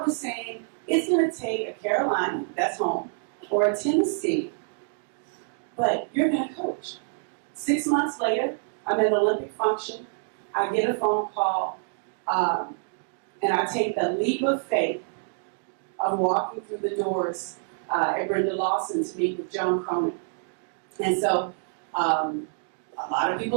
was saying, it's going to take a Carolina, that's home, or a Tennessee, but you're going to coach. 6 months later, I'm at an Olympic function. I get a phone call, and I take the leap of faith of walking through the doors at Brenda Lawson to meet with Joan Cronin. And so a lot of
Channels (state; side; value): silent; left; digital silence